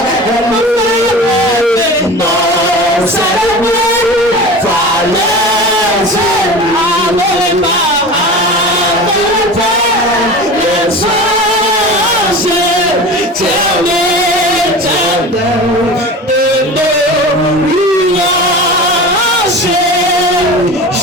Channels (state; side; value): normal; both; correlation 0.33